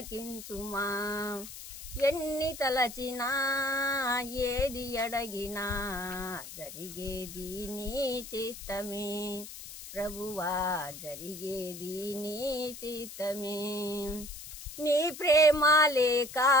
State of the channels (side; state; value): left; noise; hiss, 12 dB below the sound